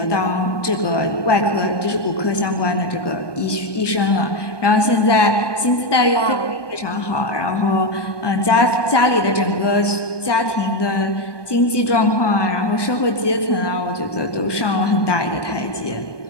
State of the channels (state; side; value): late; right; 1.2 ms